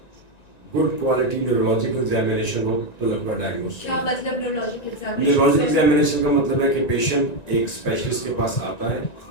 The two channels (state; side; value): late; right; 1.9 ms